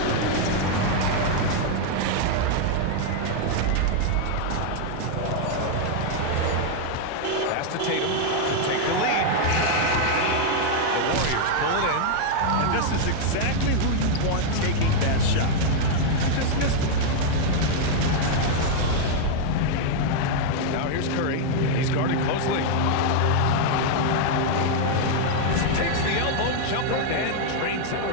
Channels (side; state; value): both; different; correlation 0.00